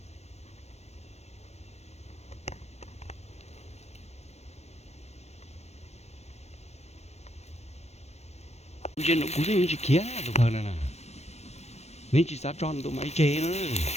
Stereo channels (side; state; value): right; late; 0.31 ms